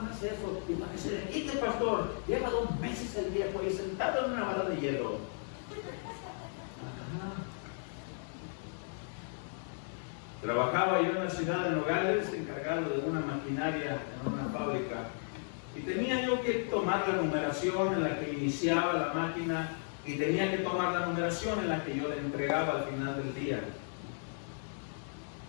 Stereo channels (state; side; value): silent; right; digital silence